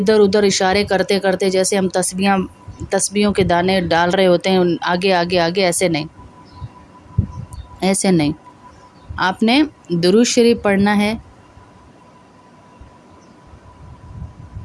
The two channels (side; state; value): both; identical; correlation 1.00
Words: ادھر اشارے کرتے کرتے جیسے ہم تسبیحوں کے دانے ڈال رہے ہوتے ہیں آگے آگے آگے، ایسے نہیں، ایسے نہیں۔ آپ نے درود شریف پڑھنا ہے،